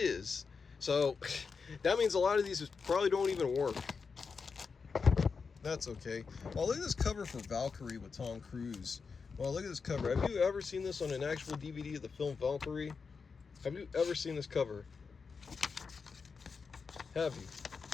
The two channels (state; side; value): quieter; right; 5.2 dB